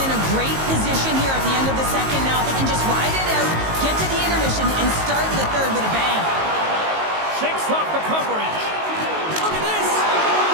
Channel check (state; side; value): late; left; 19 ms